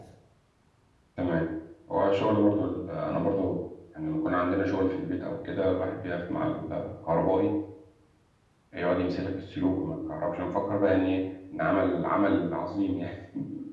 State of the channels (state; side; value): identical; both; correlation 1.00